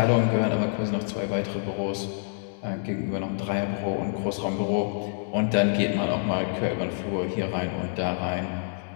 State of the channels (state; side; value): silent; right; digital silence